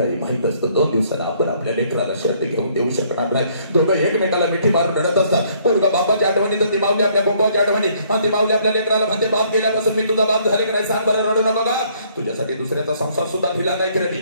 माहित असतं 2 दिवसाला आपण आपल्या लेकराला शर्ट घेऊन देऊ शकणार नाही. दोघं एकमेकाला मिठी मारून रडत असतात. पोरगा बापाच्या आठवणी तर ती माऊली आपल्या बोंबाच्या आठवणी, आणि ती माऊली आपल्या लेकराला म्हणते बाप गेल्यापासून मी तुझा बाप झाले का नाही सांग बरं, रडू नको का. तुझ्यासाठी दुसऱ्याचा संसार सुद्धा दिला नाही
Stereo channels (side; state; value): both; inverted; correlation -0.65